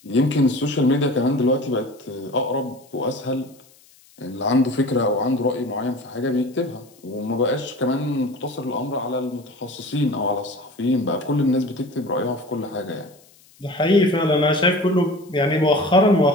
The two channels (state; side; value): noise; left; hiss, 28 dB below the sound